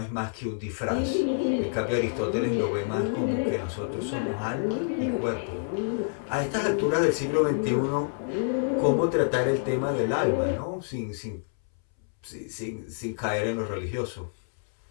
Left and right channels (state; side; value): silent; right; 60 dB below the other